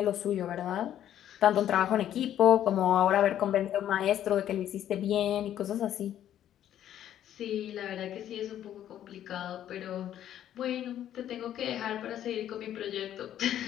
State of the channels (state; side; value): quieter; right; 11.1 dB